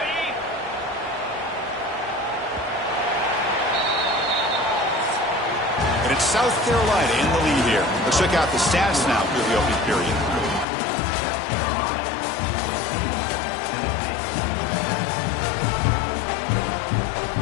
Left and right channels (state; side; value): drops out; right; at 10.7 s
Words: And it's South Carolina in the lead here. Let's check out the stats now through the opening period.